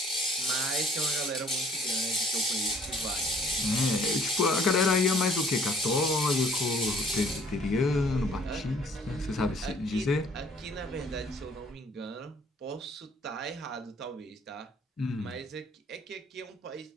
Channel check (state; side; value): normal; both; correlation 0.57